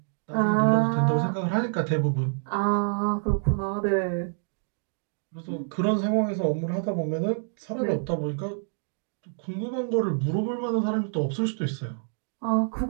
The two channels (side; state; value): left; silent; 60 dB below the other